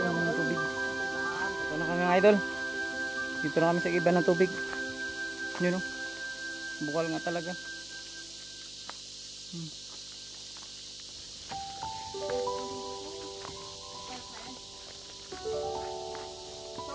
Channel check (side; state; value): right; noise; hum, 22 dB below the sound